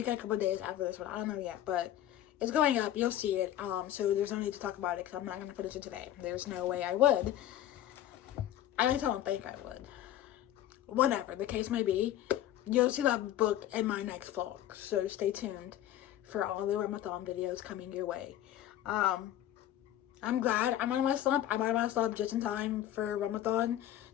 and a couple days after this one. I don't know yet, but it's going up. You'll see it. So there's no need to talk about it because I'm not going to finish it today. There's no way I would. I just don't think I would. Whatever the case may be, you'll see that book in my next vlog. So stay tuned for all the Ramathon videos coming your way. I'm glad I'm out of my slump. I'm out of my slump just in time for Ramathon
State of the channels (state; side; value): quieter; right; 12.2 dB